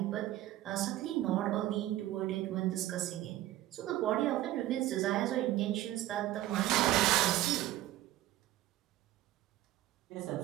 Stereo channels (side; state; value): left; quieter; 14.9 dB